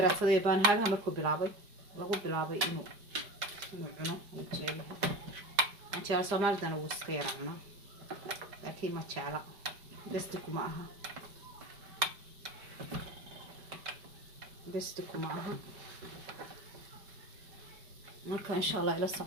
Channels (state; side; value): late; left; 5.1 ms